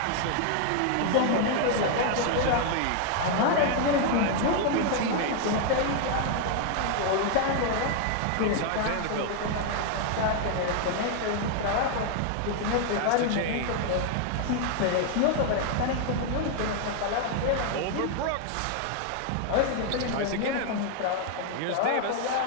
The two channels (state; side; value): different; both; correlation 0.00